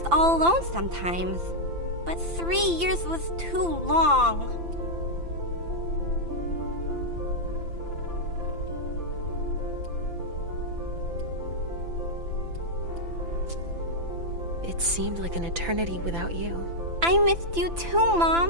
all alone sometimes. But 3 years was too long. It seemed like an eternity without you. I missed you too,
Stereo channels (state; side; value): late; left; 5.9 ms